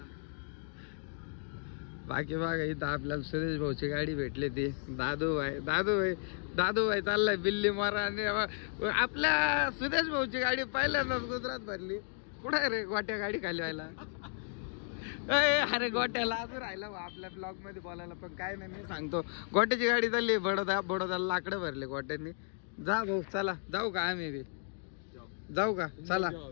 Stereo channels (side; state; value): right; silent; 55 dB below the other